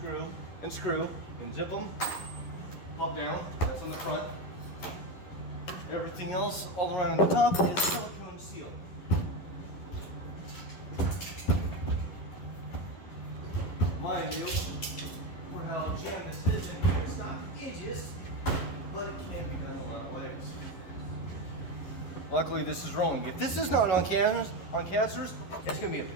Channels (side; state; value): right; late; 11 ms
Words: and screw, and zip them, pop down, that's on the front. Everything else all around on the top is silicone seal. Mind you, for how jammed this is in here, it's not edges, but it can be done a lot of ways. Luckily this is rolling. If this is not on casters, it's going to be a